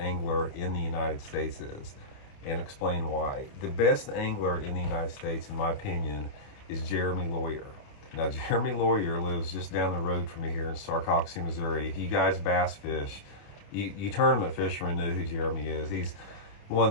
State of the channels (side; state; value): right; late; 28 ms